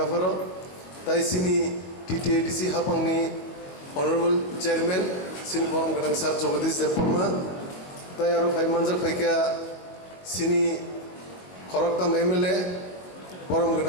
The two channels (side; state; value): right; late; 21 ms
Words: তাই সিনি টিটিএডিসি হাপাংনি অনারেবল চেয়ারম্যান সিনি বরম গনাং স্যার জগদীশ দেববর্মা তাই আরো ভাই মানজাক ফাইকা সিনি খরকতাম এমএলএ বরম